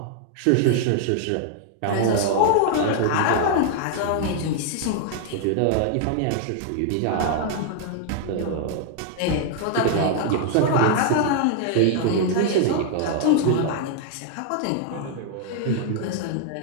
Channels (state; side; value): different; both; correlation 0.00